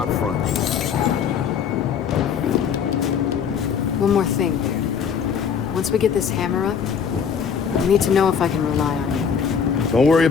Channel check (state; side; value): quieter; right; 7.0 dB